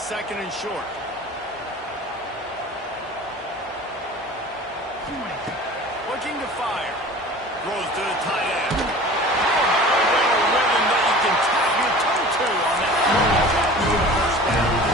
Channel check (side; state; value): both; normal; correlation 0.41